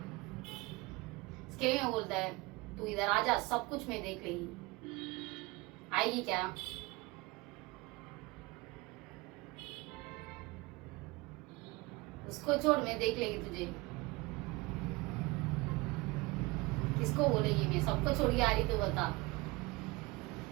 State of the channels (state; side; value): quieter; left; 23.4 dB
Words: इसके लिए मैं बोलता है तू इधर आ जा सब कुछ मैं देख लेगी आएगी क्या उसको छोड़ मैं देख लेगी तुझे किसको बोलेगी मैं सबको छोड़ के आ रही तो बता